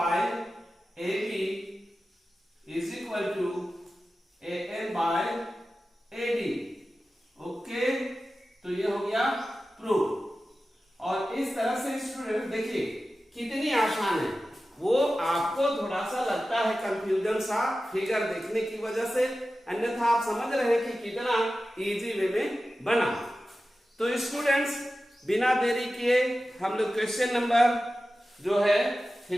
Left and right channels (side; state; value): both; normal; correlation 0.94